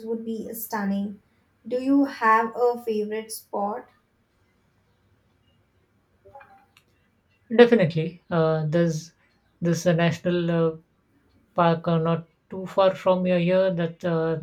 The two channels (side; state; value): both; identical; correlation 1.00